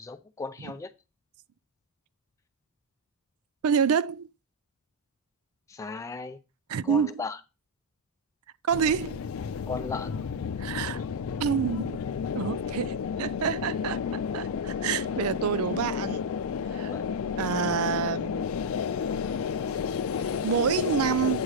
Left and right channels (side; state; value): both; normal; correlation -0.04